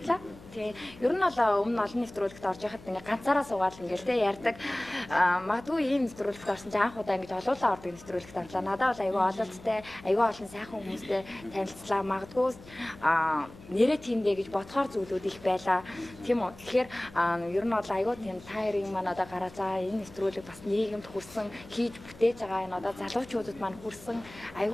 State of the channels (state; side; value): noise; left; hum, 20 dB below the sound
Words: Тийм. Ер нь бол өмнө олон нэвтрүүлэгт орж яхад ингээ ганцаараа суугаад ингээл тий ярьдаг. Магадгүй ийм нэвтрүүлэгт орсон чинь анх удаа ингээ олуулаа ордог нэвтрүүлэгт орлоо. Надад бол аюу ололттой, аюу олон сайхан хүмүүстэй танилцлаа. Магадгүй нэрээ тиймдээ гэж бодохоор зүйлүүд их байлаа. Тийм үү. Тэгэхээр ер нь бол аюу тийм тайрын маань одоо гараа за энэ нэвтрүүлэг бас нийгэмд хүрсэн хийж бүтээж байгаа энэ одоо залуучуудад маань хүрсэн